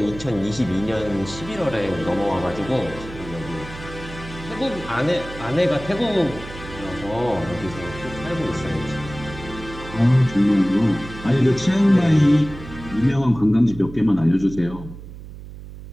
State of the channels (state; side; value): noise; right; hum, 14 dB below the sound